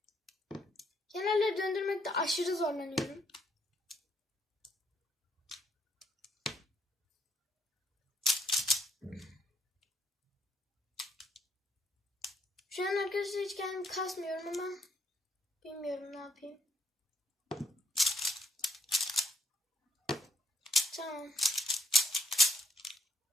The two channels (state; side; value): normal; both; correlation 0.72